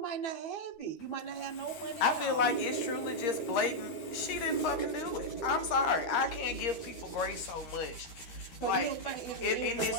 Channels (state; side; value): late; right; 13 ms